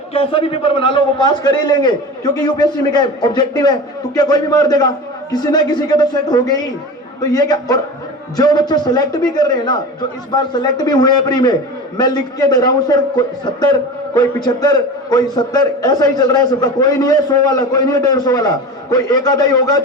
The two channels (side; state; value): both; normal; correlation 0.31